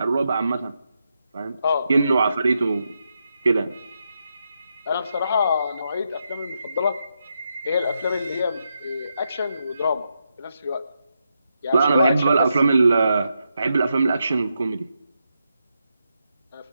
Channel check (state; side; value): inverted; both; correlation -0.84